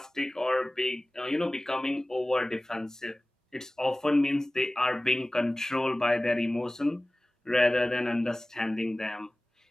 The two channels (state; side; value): normal; both; correlation 0.98